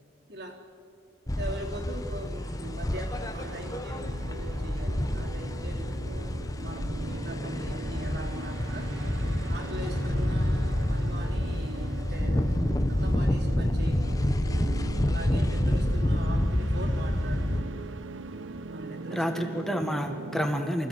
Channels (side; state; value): both; normal; correlation 0.90